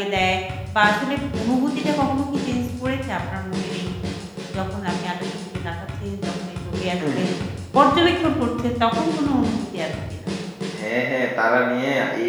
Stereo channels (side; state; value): both; identical; correlation 1.00